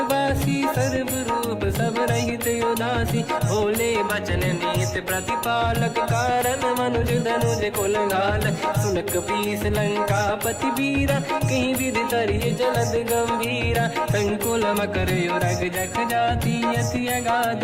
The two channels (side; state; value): both; identical; correlation 1.00